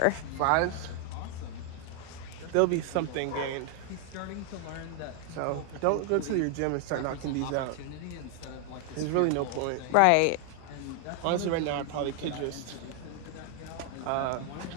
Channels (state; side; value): different; both; correlation 0.00